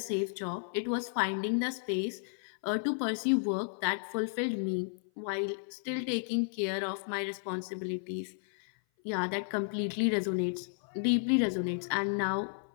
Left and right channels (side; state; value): right; silent; 56 dB below the other